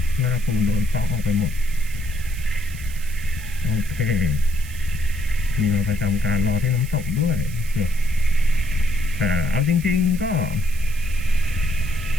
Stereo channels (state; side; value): noise; right; hiss, 17 dB below the sound